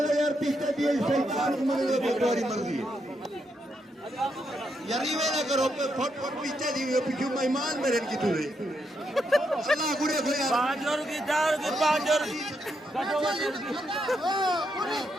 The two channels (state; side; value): normal; both; correlation 0.80